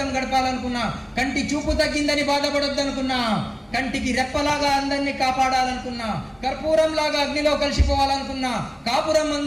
గడపాలనుకున్నా, కంటి చూపు తగ్గిందని బాధపడొద్దు అనుకున్నా, కంటికి రెప్పలాగా అందరినీ కాపాడాలనుకున్నా, కర్పూరంలాగా అగ్నిలో కలిసిపోవాలనుకున్నా, కాపురం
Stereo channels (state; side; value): identical; both; correlation 1.00